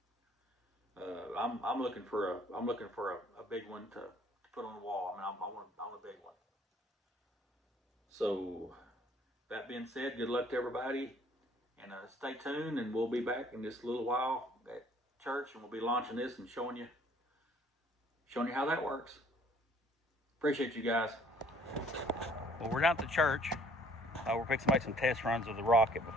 I'm looking for a big one to put on the wall. I mean, I want a big one. So that being said, good luck to everybody, and stay tuned, and we'll be back in just a little while at church, and we'll be launching this and showing you how that works. Appreciate you guys. Well, we're down at the church. We're fixing to make some test runs with the rocket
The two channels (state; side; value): normal; both; correlation 0.58